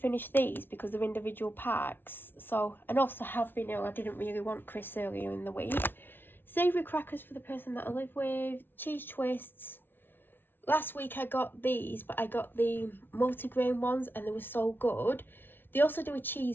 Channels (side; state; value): right; late; 0.10 ms